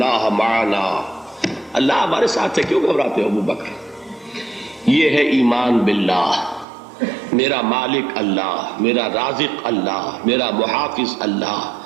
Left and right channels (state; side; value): drops out; left; at 6.7 s